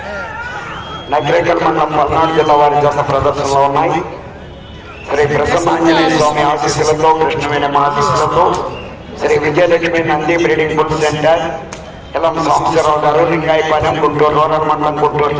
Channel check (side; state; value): both; identical; correlation 1.00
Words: నగరేకల్ మండలం పల్నాడు జిల్లా వారి జత ప్రదర్శనలో ఉన్నాయి. శ్రీ ప్రసన్నాంజనేయ స్వామి ఆశీస్సులతో, కృష్ణవేణి ఆశీస్సులతో, Shri Vijayalakshmi Nandi breeding bull centre, Elam Sambasivarao గారు, లింగాయపాలెం, గుంటూరు రూరల్ మండలం, గుంటూరు